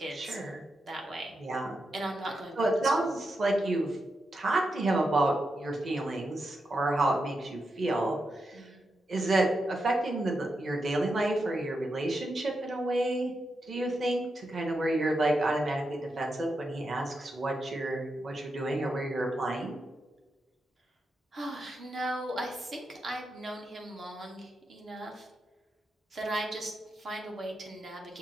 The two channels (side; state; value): both; normal; correlation 0.86